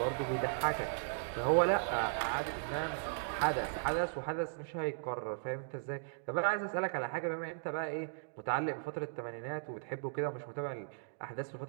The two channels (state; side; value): silent; left; digital silence